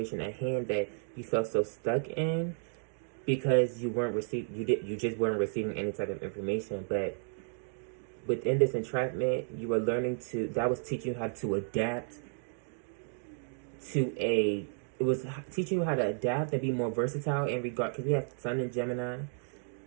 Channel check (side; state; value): left; silent; digital silence